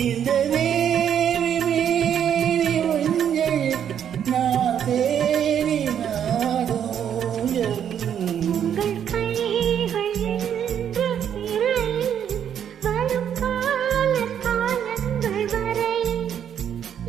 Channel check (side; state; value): left; quieter; 9.1 dB